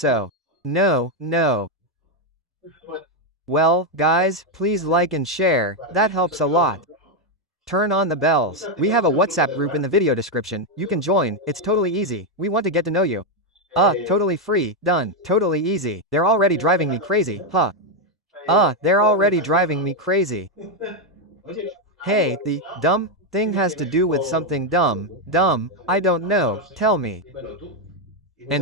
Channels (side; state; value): both; normal; correlation 0.03